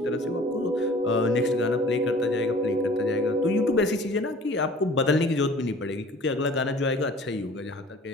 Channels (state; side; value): normal; both; correlation 0.48